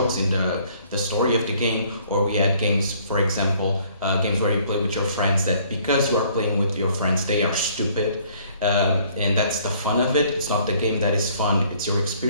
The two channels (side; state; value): both; inverted; correlation -0.60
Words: in the story of the game, or we had games, for example, games where you play with your friends that because you are playing with your friends, they are stupid. And that's the fun of it. It's not the game that is fun, it's your